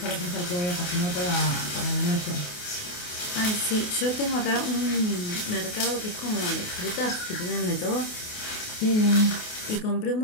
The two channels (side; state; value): right; late; 28 ms